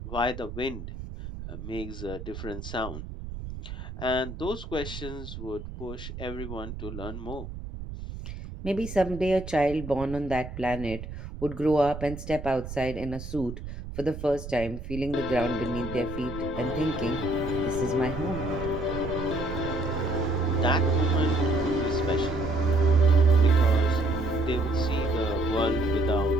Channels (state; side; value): noise; right; rumble, 10 dB below the sound